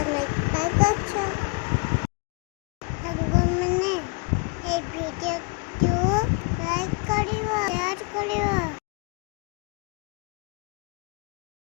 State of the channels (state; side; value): quieter; right; 31.7 dB